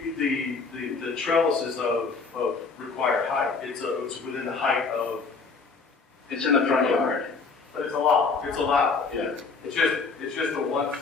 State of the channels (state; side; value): quieter; right; 4.6 dB